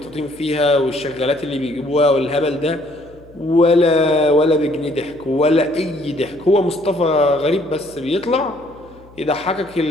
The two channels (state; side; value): noise; left; hum, 25 dB below the sound